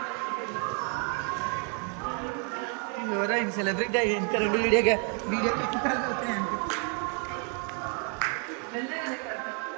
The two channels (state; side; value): quieter; left; 39.3 dB